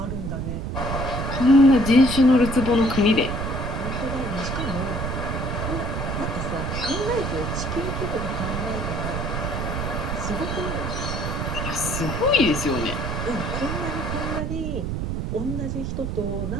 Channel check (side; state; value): right; noise; rumble, 3 dB below the sound